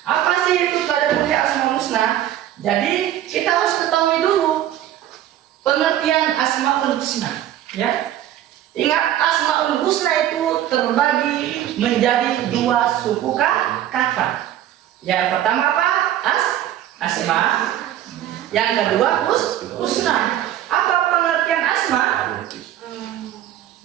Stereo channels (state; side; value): quieter; left; 12.1 dB